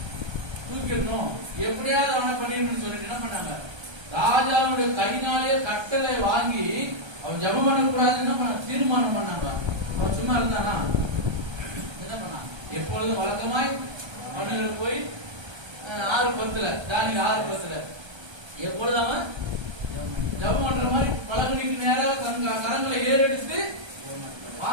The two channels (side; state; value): left; late; 1.3 ms